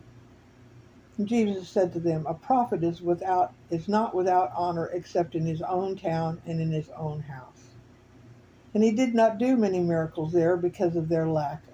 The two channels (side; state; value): both; identical; correlation 1.00